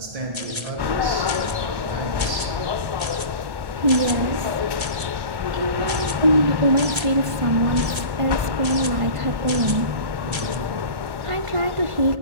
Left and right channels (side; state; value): left; late; 1.3 ms